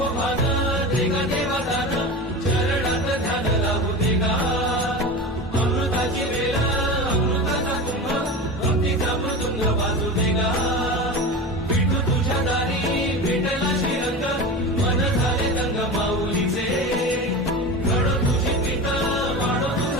भान देगा देवा दान चरणात ध्यान लागू देगा अमृताची वेळ अमृताचा कुंभ भक्तीचा मृदुंग वाजू देगा विठू तुझ्या दारी भेटला श्रीरंग मन झाले दंग माऊलीचे घडो तुझी पिता वाढो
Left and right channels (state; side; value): normal; both; correlation 0.29